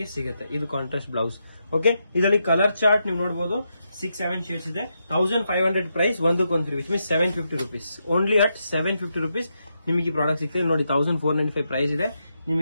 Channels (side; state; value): both; inverted; correlation -0.83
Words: ಸಿಗುತ್ತೆ. ಇದು ಕಾಂಟ್ರಾಸ್ಟ್ ಬ್ಲೌಸ್. ಓಕೆ, ಇದರಲ್ಲಿ ಕಲರ್ ಚಾರ್ಟ್ ನೀವು ನೋಡಬಹುದು 6-7 ಶೇಡ್ಸ್ ಇದೆ. 1500 ಪ್ರೈಸ್, ಒಂದಕ್ಕೊಂದು free, which means 750 rupees. Only at 750 rupees ನಿಮಗೆ ಈ ಪ್ರಾಡಕ್ಟ್ ಸಿಗ್ತದೆ. ನೋಡಿ 1495 ಪ್ರೈಸ್ ಇದೆ,